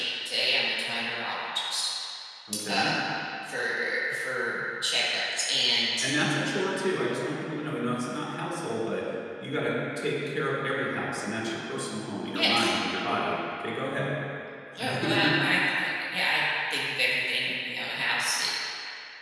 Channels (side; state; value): both; identical; correlation 1.00